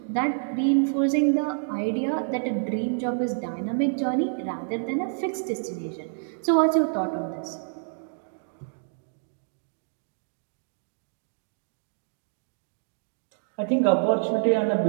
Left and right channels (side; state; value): left; silent; digital silence